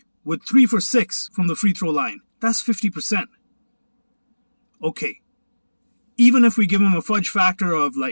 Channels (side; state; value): both; inverted; correlation -1.00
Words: with 3 for 6 from the free throw line. That's 50%. Okay. Even if we give him a fudge factor of